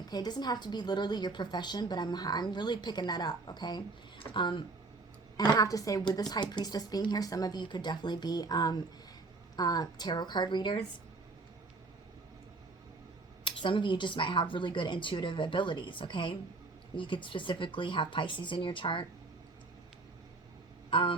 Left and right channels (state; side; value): quieter; left; 3.6 dB